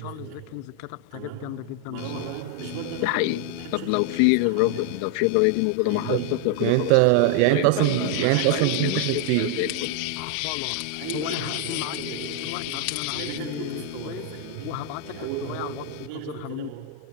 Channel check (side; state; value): both; different; correlation 0.00